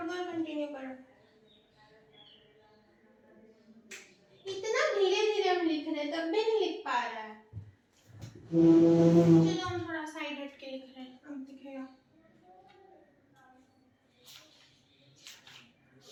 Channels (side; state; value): both; identical; correlation 1.00